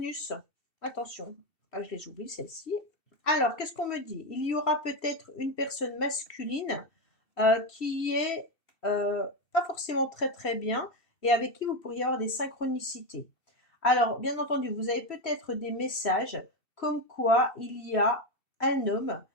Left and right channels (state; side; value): late; right; 2.7 ms